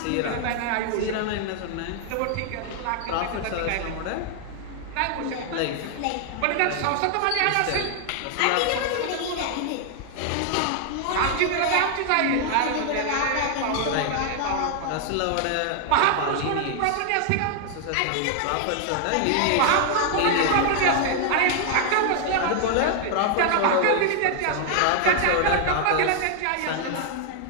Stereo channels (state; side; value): different; both; correlation 0.00